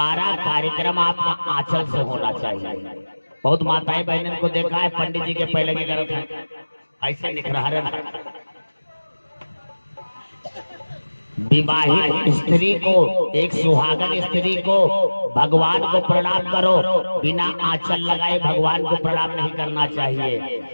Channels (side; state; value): both; inverted; correlation -1.00